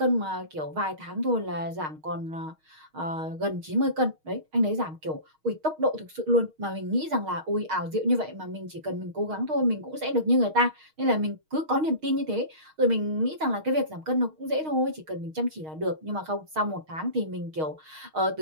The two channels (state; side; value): late; left; 6.4 ms